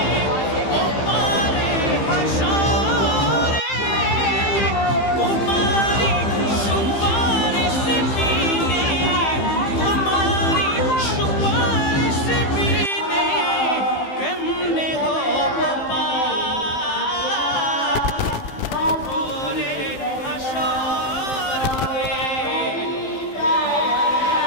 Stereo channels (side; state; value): right; late; 15 ms